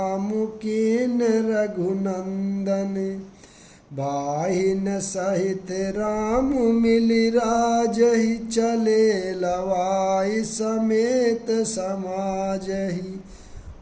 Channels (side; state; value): both; identical; correlation 1.00